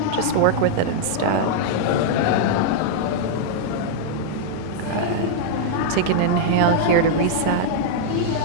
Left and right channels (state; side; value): different; both; correlation -0.02